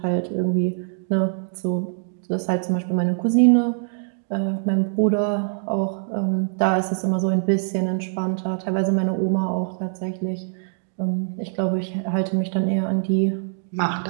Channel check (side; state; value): left; silent; digital silence